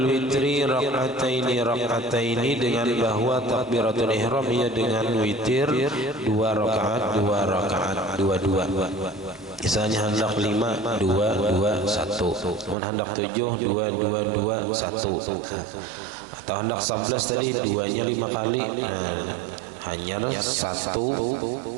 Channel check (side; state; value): left; drops out; at 12.8 s